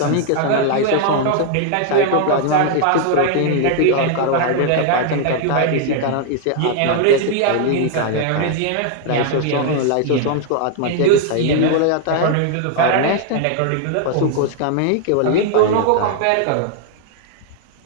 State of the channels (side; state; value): both; different; correlation 0.00